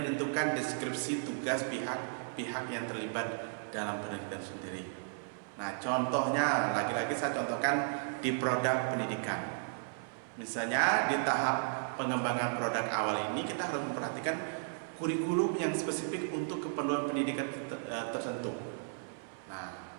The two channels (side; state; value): left; silent; 55 dB below the other